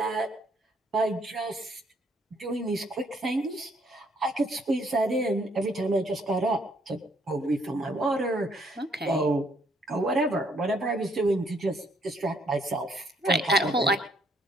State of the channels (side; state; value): both; normal; correlation 0.67